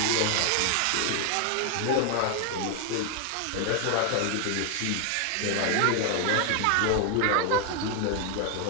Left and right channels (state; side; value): different; both; correlation 0.01